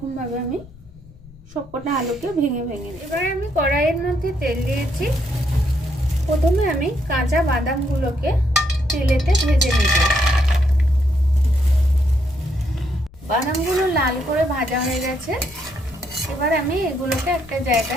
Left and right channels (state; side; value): noise; left; rumble, 22 dB below the sound